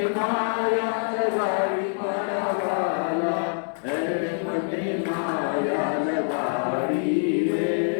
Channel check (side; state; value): right; silent; 62 dB below the other